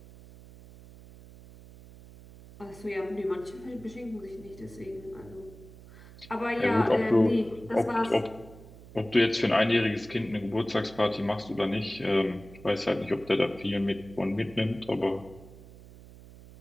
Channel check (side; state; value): right; noise; hum, 19 dB below the sound